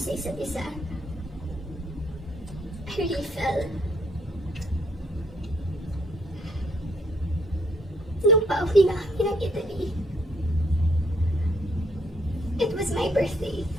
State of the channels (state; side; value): normal; both; correlation 0.68